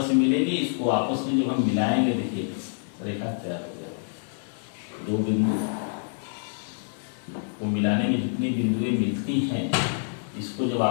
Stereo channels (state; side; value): silent; right; digital silence